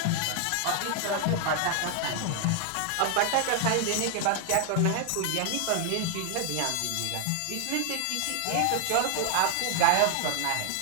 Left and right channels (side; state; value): both; different; correlation 0.00